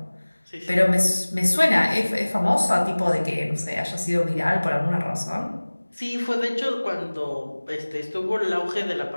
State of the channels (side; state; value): both; inverted; correlation -1.00